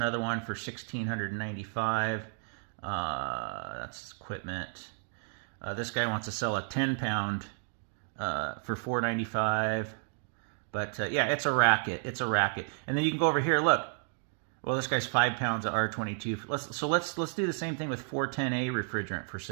one for $1,695. That's equipment. This guy wants to sell a 10-pound for $495. But yeah, it's a racket. It's a racket. And then you can go over here. Look. Well, this guy's 5 pounds of R22. Let's do the same thing with 410A refrigerant for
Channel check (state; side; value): silent; left; 56 dB below the other